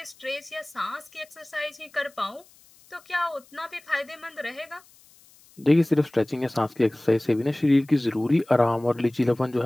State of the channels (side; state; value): left; noise; hiss, 27 dB below the sound